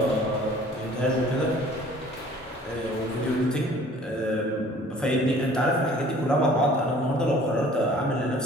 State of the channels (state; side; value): normal; both; correlation 0.51